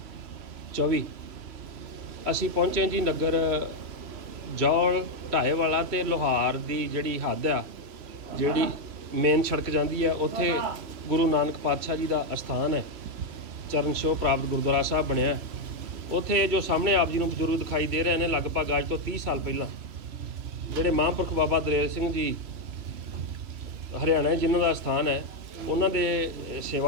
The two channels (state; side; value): late; left; 2.7 ms